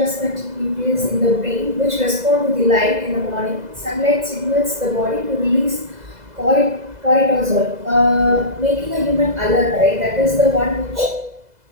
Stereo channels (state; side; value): late; left; 2.0 ms